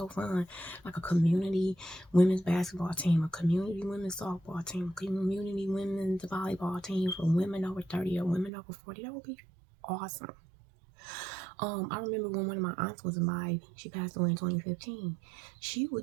fun. Like a community women's basketball team, a community women's softball team, a community women's volleyball team for women over 30 or women over 40. That would be awesome. I remember when one of my aunts was alive, she passed away in 2015.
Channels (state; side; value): drops out; left; at 8.5 s